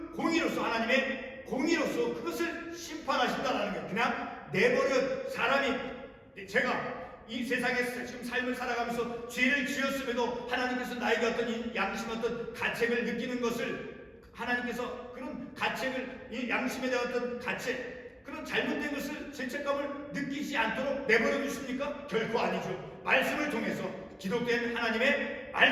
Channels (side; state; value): both; identical; correlation 1.00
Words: 공의로서, 하나님의 공의로서 그것을 심판하신다라는 거예요. 그냥 내버려 사람이, 제가 이 세상에서 지금 삶을 살아가면서 죄를 지었음에도 하나님께서 나에게 어떤 양심, 어떤 가책을 느끼는 것을, 하나님께서 그런 가책을, 이 양심에 대한 어떤 가책, 그런 잘못된 것을, 죄책감을 느끼지 않도록 내버려 두십니까? 결코 아니죠. 말씀을 통해서, 기록된 하나님의